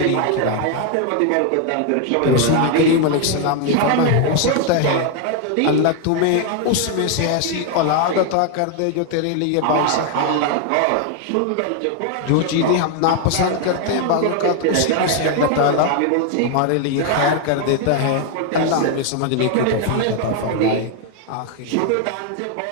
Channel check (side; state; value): both; different; correlation 0.00